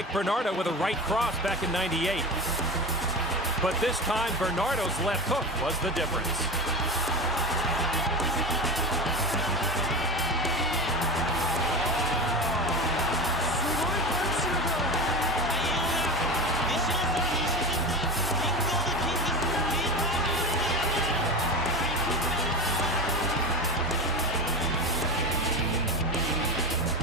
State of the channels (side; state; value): both; normal; correlation 0.26